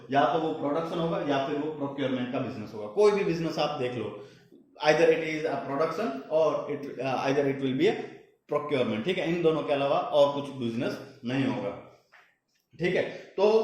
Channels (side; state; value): both; identical; correlation 1.00